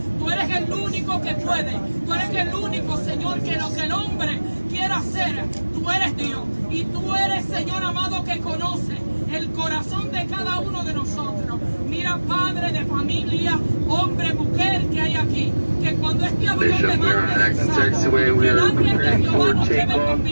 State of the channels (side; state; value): both; inverted; correlation -1.00